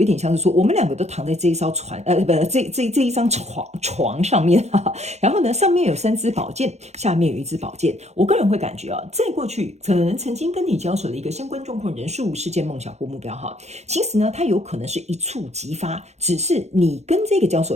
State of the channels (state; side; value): late; left; 0.32 ms